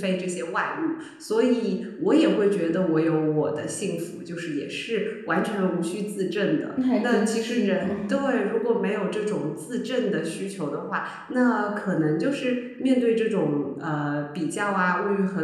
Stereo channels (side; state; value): both; identical; correlation 1.00